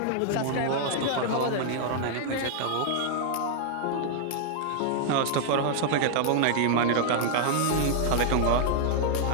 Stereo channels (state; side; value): different; both; correlation -0.01